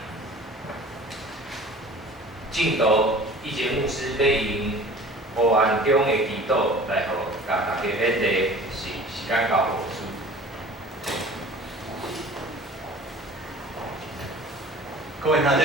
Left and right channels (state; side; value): normal; both; correlation 0.44